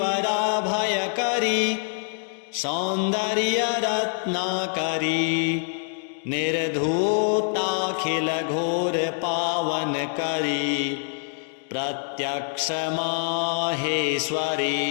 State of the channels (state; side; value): silent; right; 62 dB below the other